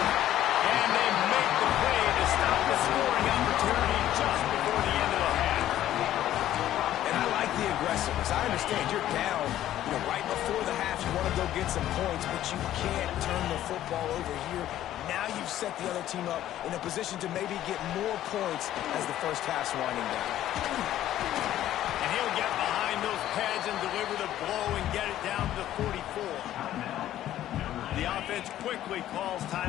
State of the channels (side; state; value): right; quieter; 12.7 dB